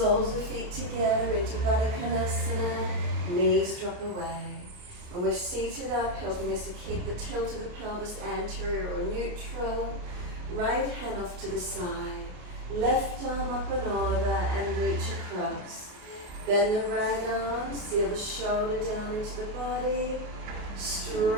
of feet together into Baddha Konasana, knees drop away. When we're seated up, helping us to keep the tilt of the pelvis anterior or neutral, right hand off to the side, left arm up and over and reach across. Bend the right arm, seal the shoulder down into the body,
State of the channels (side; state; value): left; late; 29 ms